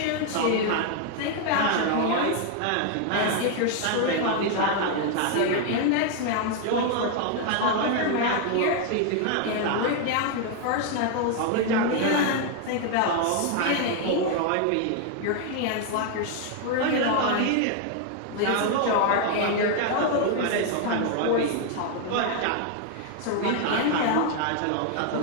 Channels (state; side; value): different; both; correlation 0.00